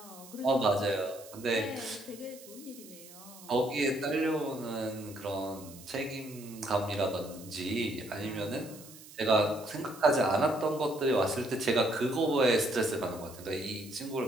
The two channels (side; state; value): right; noise; hiss, 18 dB below the sound